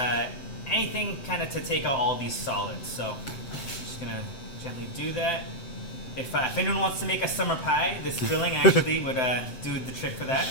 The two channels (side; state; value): right; late; 7.8 ms